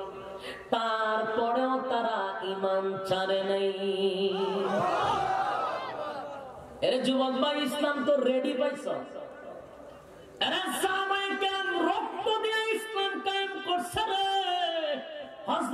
তারপরেও তারা ঈমান ছাড়ে নাই। এরে যুবক ভাই, ইসলাম তো রেডি পাইছ। এরে সাহাবায়ে কেরাম রক্ত দিয়ে ইসলাম কায়েম করছে রে।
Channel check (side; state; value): both; identical; correlation 1.00